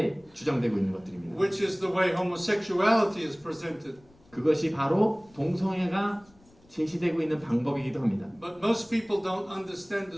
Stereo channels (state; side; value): noise; left; rumble, 30 dB below the sound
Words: 주장되고 있는 것들입니다. Which is the way homosexuality is presented. 그것이 바로 동성애가 제시되고 있는 방법이기도 합니다. But most people don't understand the